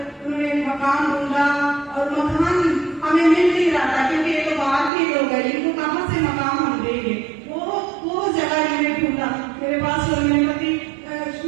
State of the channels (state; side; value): drops out; left; at 4.9 s